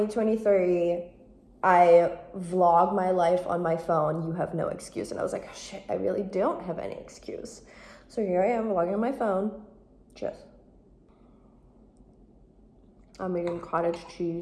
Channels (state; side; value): identical; both; correlation 1.00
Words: I vlog my life on my phone. You have no excuse. And I was like, oh, shit, I really don't have any excuse. So here I am vlogging on my phone. Just, I'm eating cottage